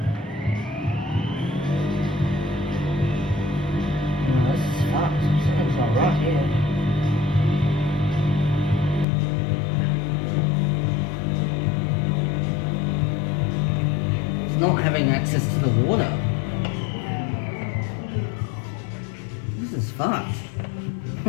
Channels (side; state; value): right; drops out; at 9.1 s